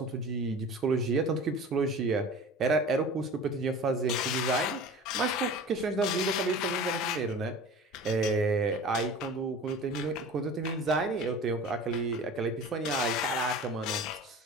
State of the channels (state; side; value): normal; both; correlation 0.39